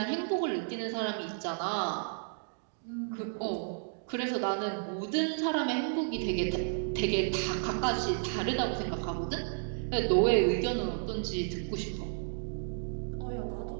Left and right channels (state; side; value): silent; left; digital silence